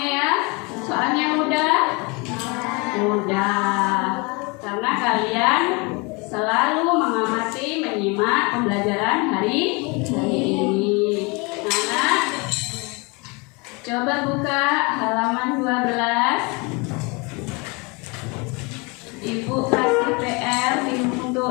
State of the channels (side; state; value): right; quieter; 28.8 dB